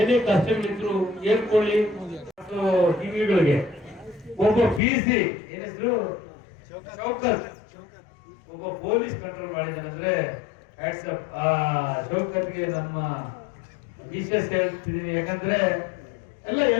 ಕಷ್ಟಗಳಿದ್ರು ಹೇಳ್ಕೊಳ್ಳಿ. ಟಿವಿಗಳಿಗೆ ಒಬ್ಬ PC ಏನ್ ಹೆಸರು ಶೌಕತ್, ಒಬ್ಬ ಪೊಲೀಸ್ ಕಂಟ್ರೋಲ್ ಮಾಡಿದಾನಂದ್ರೆ ವಾಟ್ಸಪ್ ಶೌಕತ್ಗೆ ನಮ್ಮ ವಿಶೇಷ ಹೇಳ್ತಿದ್ದೀನಿ. ಯಾಕಂದ್ರೆ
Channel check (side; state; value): right; drops out; at 4.8 s